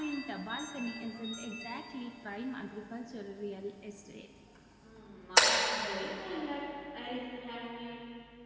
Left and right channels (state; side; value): identical; both; correlation 1.00